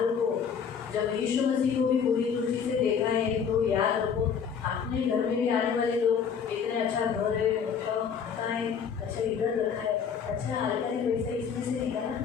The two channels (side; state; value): right; quieter; 6.9 dB